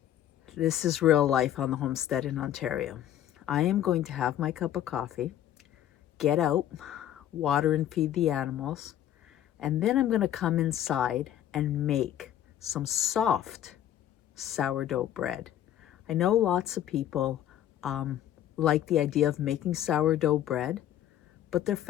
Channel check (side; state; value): right; quieter; 11.4 dB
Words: This is real life on the homestead in Ontario. I am going to have my cup of coffee, get out, water and feed the animals, and then I'm going to come inside and make some soft sourdough bread. I know lots of people like the idea of making sourdough bread, but their